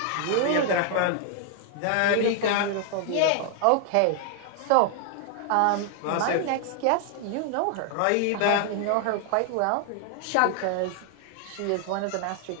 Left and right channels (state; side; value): different; both; correlation 0.00